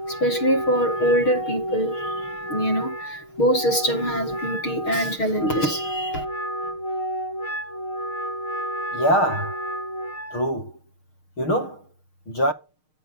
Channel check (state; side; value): late; right; 6.5 ms